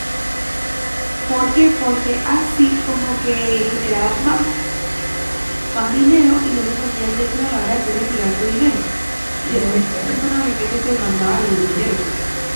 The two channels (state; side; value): inverted; both; correlation -1.00